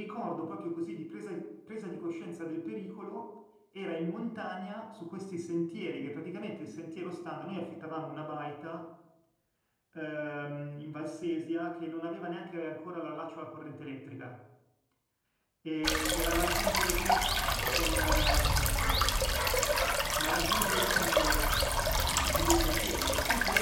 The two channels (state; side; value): identical; both; correlation 1.00